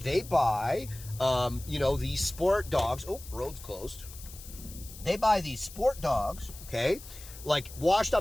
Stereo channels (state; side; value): noise; left; hiss, 16 dB below the sound